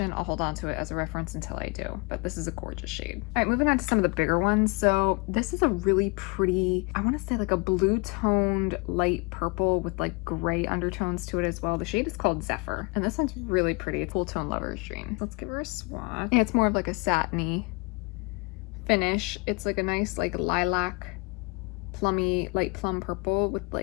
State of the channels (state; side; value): quieter; right; 30.0 dB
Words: I'll hold on to it as a reference until I do, but this is a gorgeous shade. All right, moving on to some of the bigger ones. So this is a really pretty, I want to say like a blue toned light purple with like gray undertones to it as well. The shade is called Zephyr, and this one's really pretty. It's Cool Tone Lover's Dream. Let's give her a swatch. Yeah, it's more of like a satiny finish. It's like a nice like lilac, plummy, light plum purple with